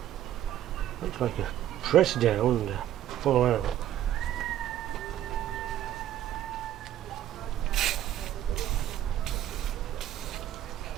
Looks like a press down and fall out.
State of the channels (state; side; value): quieter; left; 12.0 dB